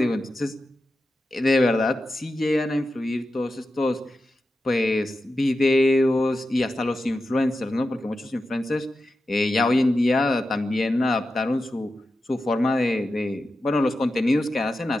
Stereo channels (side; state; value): both; normal; correlation 0.91